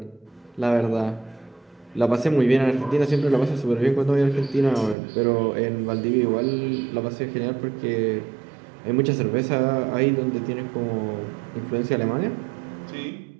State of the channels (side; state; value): left; drops out; at 5.0 s